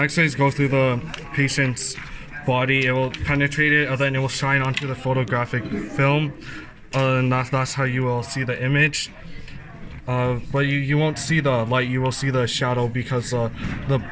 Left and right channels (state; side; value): identical; both; correlation 1.00